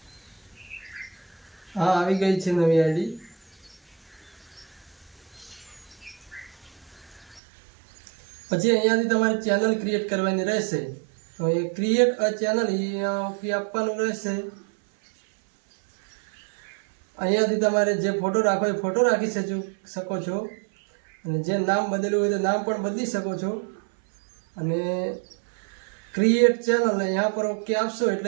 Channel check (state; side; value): drops out; left; at 7.4 s